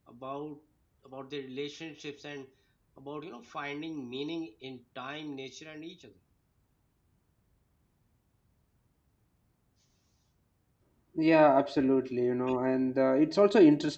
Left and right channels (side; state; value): both; identical; correlation 1.00